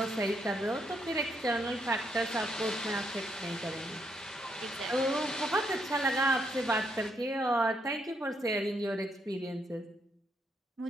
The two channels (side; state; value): both; normal; correlation 0.76